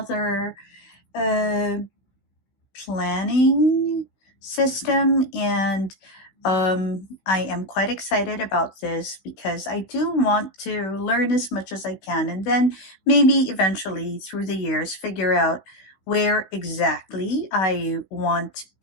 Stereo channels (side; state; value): right; late; 16 ms